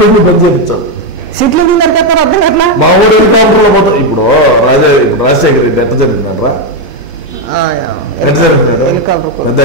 పని చేయించాలి. సీట్లు నరికేస్తారు అర్థం అట్లా. మా ఊరు హెలికాప్టర్ లో పోతాం. ఇప్పుడు రాజశేఖర్ రెడ్డి ఎట్ట జరిగిందంటారా,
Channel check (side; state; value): both; normal; correlation 0.05